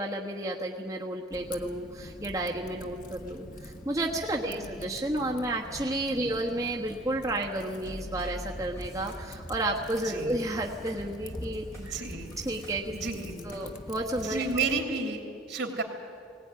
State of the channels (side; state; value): both; normal; correlation 0.49